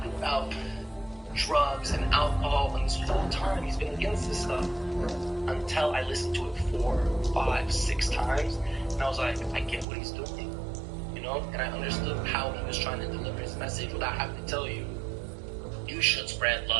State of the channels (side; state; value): left; drops out; at 9.9 s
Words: about drugs and alcohol? And this whole time he's been against this stuff. Until I listened to it 4, 5, 6 times, and I was like, I get what he's doing. And I understood how he was trying to deliver his message without having to tell you, you should spread